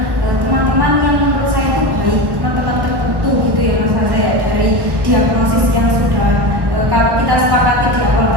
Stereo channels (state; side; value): late; left; 1.1 ms